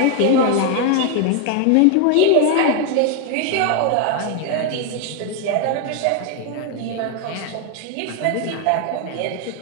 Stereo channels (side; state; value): both; different; correlation 0.01